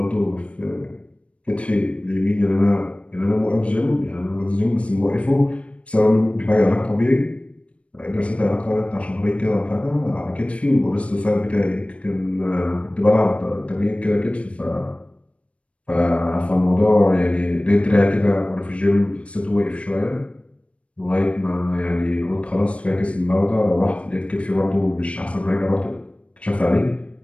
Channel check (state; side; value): late; right; 0.062 ms